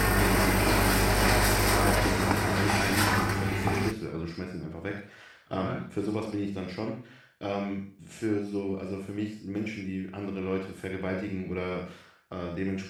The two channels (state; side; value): identical; both; correlation 1.00